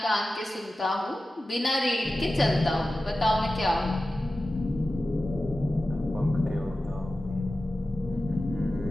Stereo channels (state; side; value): normal; both; correlation 0.94